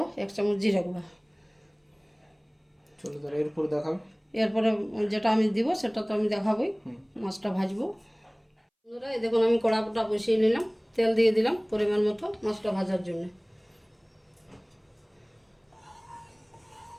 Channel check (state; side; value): identical; both; correlation 1.00